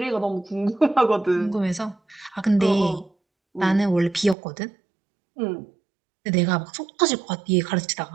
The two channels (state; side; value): drops out; left; at 4.4 s